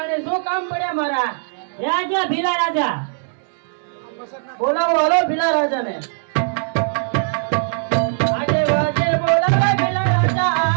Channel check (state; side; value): silent; left; digital silence